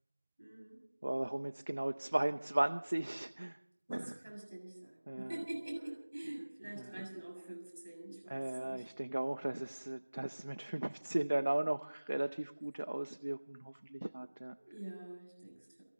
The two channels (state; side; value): inverted; both; correlation -1.00